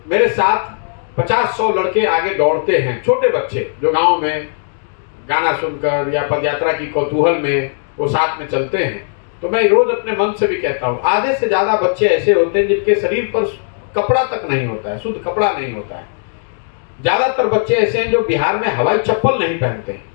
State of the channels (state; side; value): silent; right; digital silence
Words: मेरे साथ 50-100 लड़के आगे दौड़ते हैं, छोटे बच्चे जो गांव में गाना सुनकर या पदयात्रा की कौतूहल में वो साथ में चलते हैं, तो मैं रोज अपने मन से भी कहता हूँ, आधे से ज्यादा बच्चे ऐसे होते हैं जिनके शरीर पर कपड़ा तक नहीं होता है, शुद्ध कपड़ा नहीं होता है। ज्यादातर बच्चे ऐसे हैं जो बिहार में हवाई चप्पल नहीं पहनते हैं।